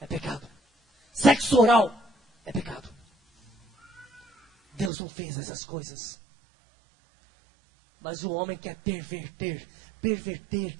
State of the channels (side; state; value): left; drops out; at 4.9 s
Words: pecado. Sexo oral é pecado. Deus não fez essas coisas. Mas o homem quer perverter. Perverter